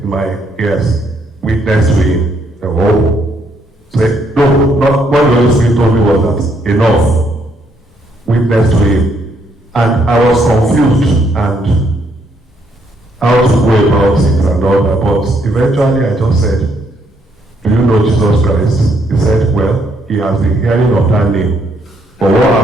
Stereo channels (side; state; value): both; normal; correlation 0.72